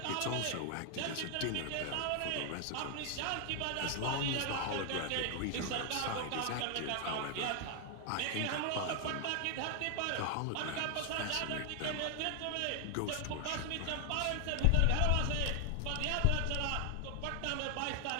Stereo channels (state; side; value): different; both; correlation 0.00